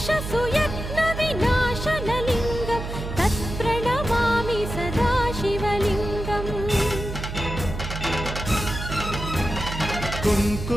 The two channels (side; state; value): right; noise; hum, 7 dB below the sound